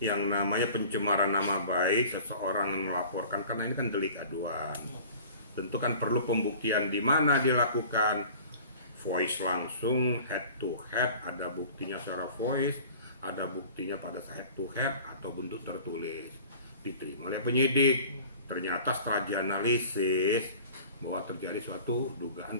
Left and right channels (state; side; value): inverted; both; correlation -0.44